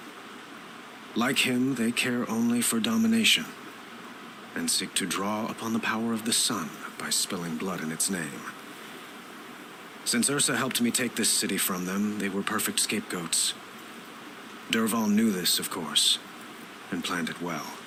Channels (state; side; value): identical; both; correlation 1.00